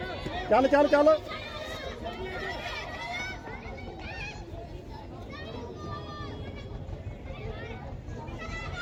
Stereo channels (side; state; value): both; identical; correlation 1.00